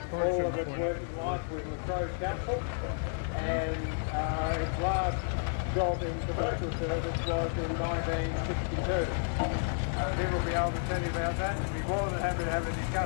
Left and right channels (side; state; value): right; silent; digital silence